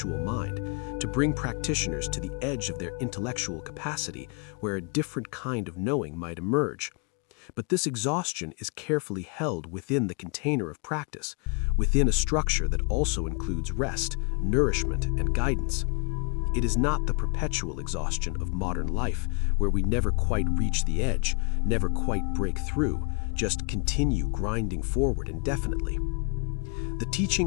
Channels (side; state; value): right; quieter; 34.4 dB